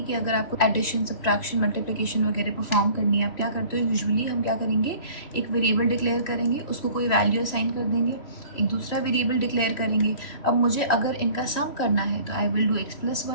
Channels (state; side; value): late; right; 3.0 ms